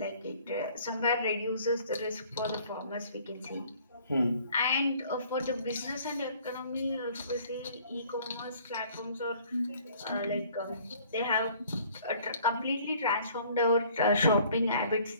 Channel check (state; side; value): inverted; both; correlation -0.56